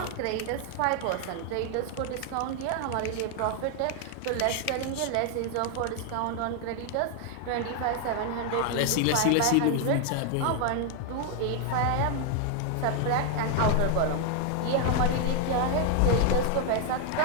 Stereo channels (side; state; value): both; different; correlation 0.00